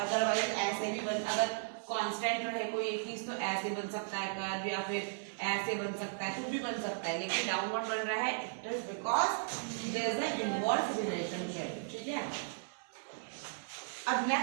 ऐसे भी बन, अगर कांस्टेंट रहे कोई एक चीज तो ऐसे बन सकता है कर्व, या फिर ऐसे बन सकता है, कुछ भी बन सकता है, लेकिन डाउनवर्ड बन रहा है it is because there is a inverse relationship, ठीक है। अब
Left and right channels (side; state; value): left; silent; 54 dB below the other